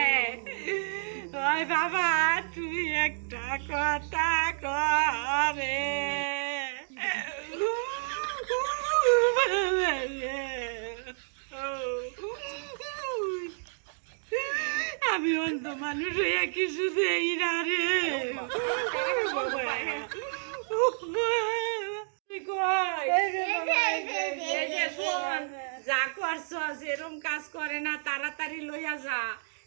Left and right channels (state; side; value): silent; left; digital silence